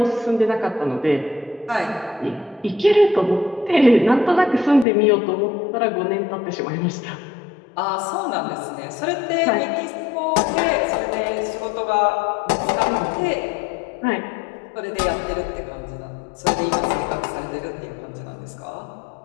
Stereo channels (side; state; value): right; drops out; at 4.9 s